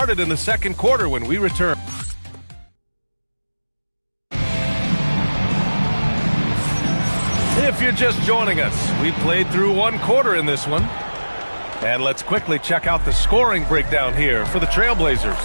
in the second quarter when we return. If you're just joining us, we played through one quarter in this one. And let's quickly check out the scoring breakdown here for the Trailblazers.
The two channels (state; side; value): inverted; both; correlation -1.00